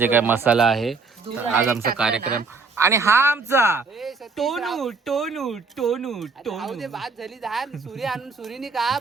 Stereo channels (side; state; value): left; quieter; 4.4 dB